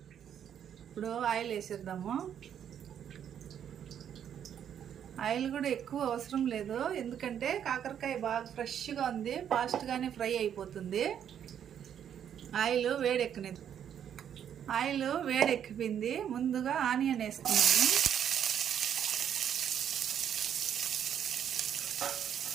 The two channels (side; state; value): left; quieter; 9.1 dB